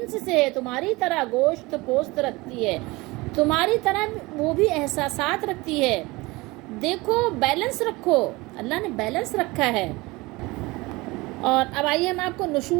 سے ہے، تمہاری طرح گوشت پوست رکھتی ہے، تمہاری طرح وہ بھی احساسات رکھتی ہے۔ دیکھو، بیلنس رکھو، اللہ نے بیلنس رکھا ہے۔ اور اب آئیے ہم آپ کو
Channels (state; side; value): quieter; left; 22.6 dB